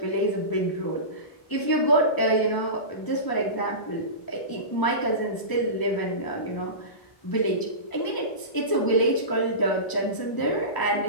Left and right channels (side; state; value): right; late; 1.0 ms